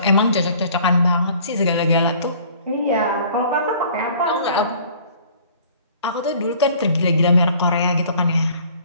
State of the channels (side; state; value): both; inverted; correlation -0.52